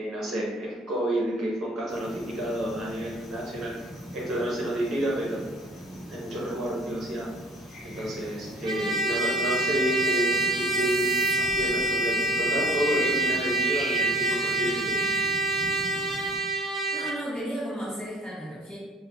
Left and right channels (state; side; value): normal; both; correlation 0.51